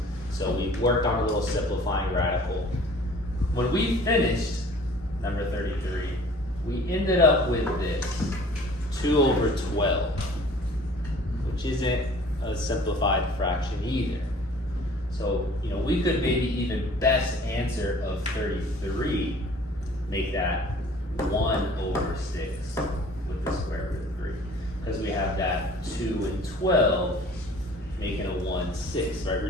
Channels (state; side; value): normal; both; correlation 0.50